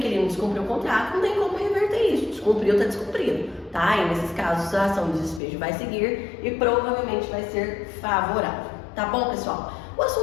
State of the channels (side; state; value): right; drops out; at 5.4 s